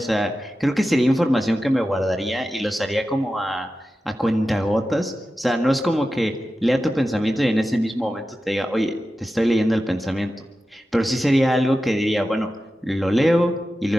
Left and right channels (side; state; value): both; normal; correlation 0.92